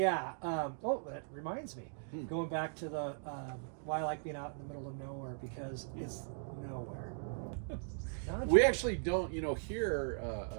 that reminds me. Going back to the why I like being out in the middle of nowhere, because it's nowhere. We actually don't, here,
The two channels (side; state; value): left; silent; digital silence